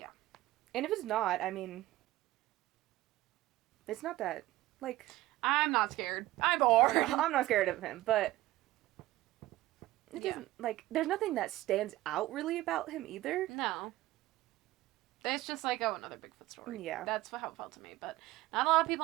And if it's not, I mean, it's not that, like... I'm not scared. I'm bored. I'm not scared of him, but it doesn't, there's nothing that stands out really about him either. No. It's just like, another Bigfoot story. Yeah. That's how it felt to me, but not a lot of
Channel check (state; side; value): quieter; left; 16.9 dB